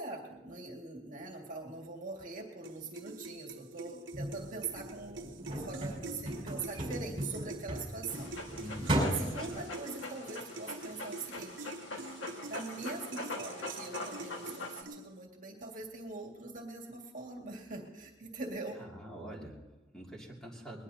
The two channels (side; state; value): both; normal; correlation 0.41